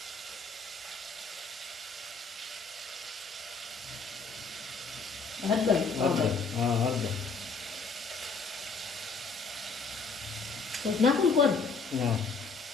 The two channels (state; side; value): quieter; right; 4.4 dB